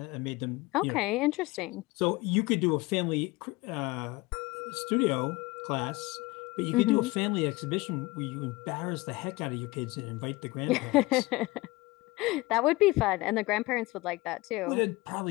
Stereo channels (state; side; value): quieter; right; 21.6 dB